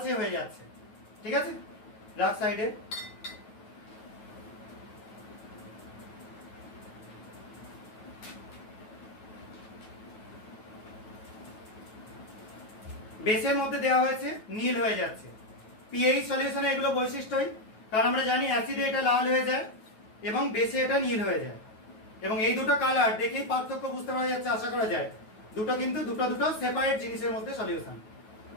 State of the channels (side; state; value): right; late; 9.3 ms